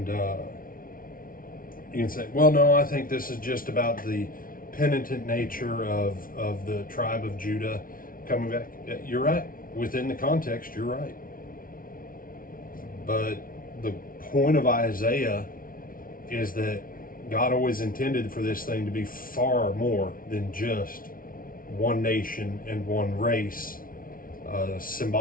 you can say, well, no, I think this is just about the penitent nature of the tribe of Judah coming back. You're right. Within the context, you're right. But the point of Isaiah is that God always intended for this thing to be far more than just one nation and one race,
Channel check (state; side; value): late; right; 0.41 ms